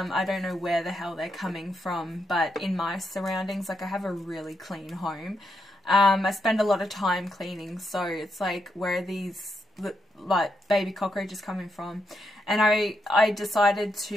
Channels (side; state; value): both; normal; correlation 0.82